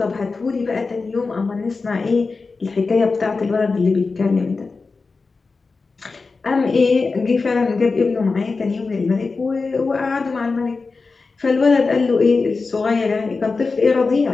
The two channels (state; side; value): quieter; right; 4.2 dB